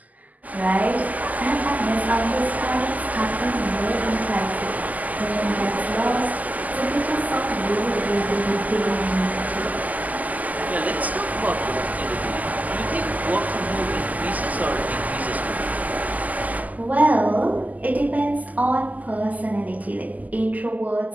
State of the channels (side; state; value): left; late; 0.079 ms